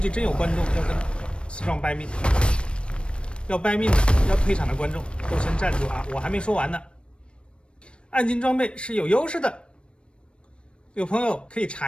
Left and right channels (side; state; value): right; late; 0.058 ms